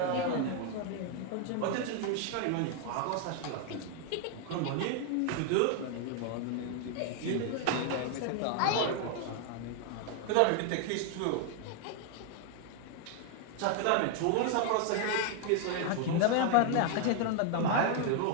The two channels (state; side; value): different; both; correlation 0.00